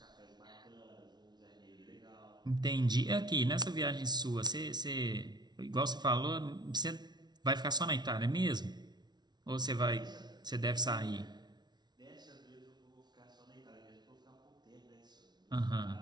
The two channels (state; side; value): late; left; 0.20 ms